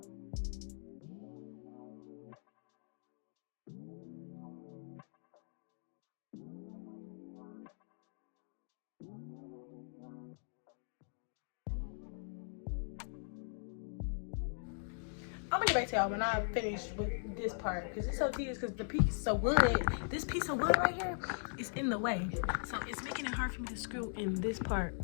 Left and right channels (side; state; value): right; silent; digital silence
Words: I'm gonna get back to y'all when I finish with this part, because it's so tedious, because the piece of wood, this piece of wood right here is in the way, so it's making it hard for me to screw in this part